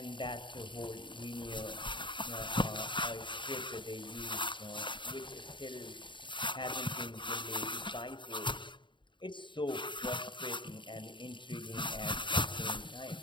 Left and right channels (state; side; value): late; right; 0.23 ms